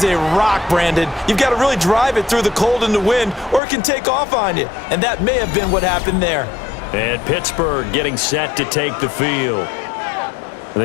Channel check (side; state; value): right; drops out; at 3.6 s